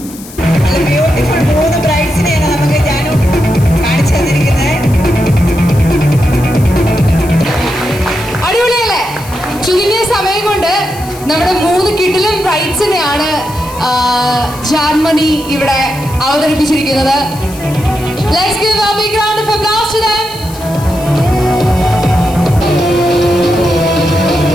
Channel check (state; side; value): noise; left; hiss, 17 dB below the sound